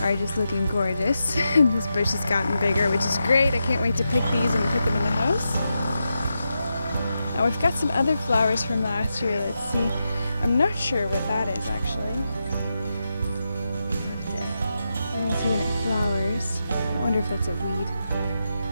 just looking gorgeous. This bush has gotten bigger, which is great. I can't wait to pick these and put them in the house. Now we've got some other flowers from last year. Let's see. I'm not sure what that is actually. I didn't see when it flowers. I wonder if that's a weed.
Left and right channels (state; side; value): inverted; both; correlation -0.87